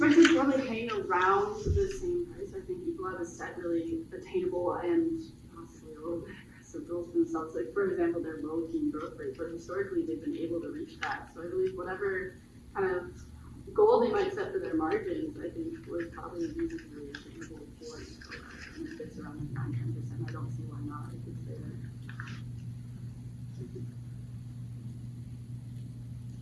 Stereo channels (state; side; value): identical; both; correlation 1.00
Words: it to probably hang around the same price. I think Ecolab has set really attainable and possibly a little bit aggressive goals for themselves. Like, for example, their low teen growth rate, but historically they've been able to reach that. So I believe whatever kind of goal they might set for their margins, I think would probably be reasonably attainable for Ecolab. And if it's around like 9-10%, I don't see why not. It could stay there.